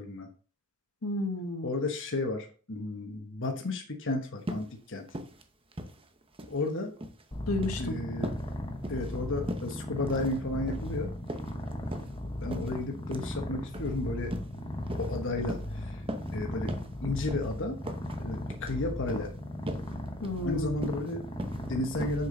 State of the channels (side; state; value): both; normal; correlation 0.47